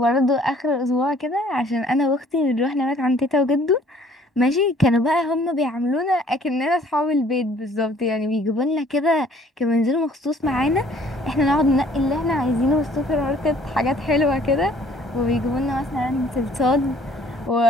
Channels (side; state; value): both; normal; correlation 0.57